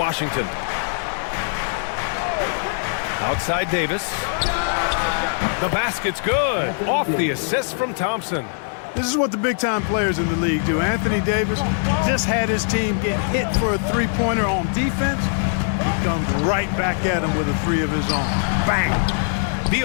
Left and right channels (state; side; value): silent; right; 64 dB below the other